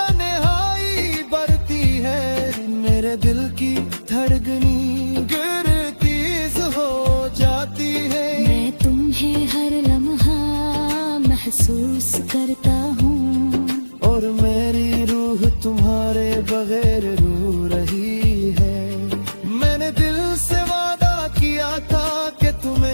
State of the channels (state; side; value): inverted; both; correlation -1.00